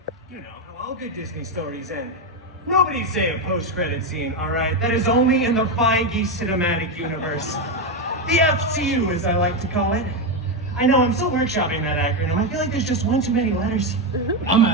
You know, how all good Disney stories end. Nobody say a post-credit scene, all right? That is only in the Feige cinematic universe. The FCU, as I like to call it. I know, I'm still workshopping that acronym. I feel like there's just one too many letters. I'm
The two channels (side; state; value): both; normal; correlation 0.09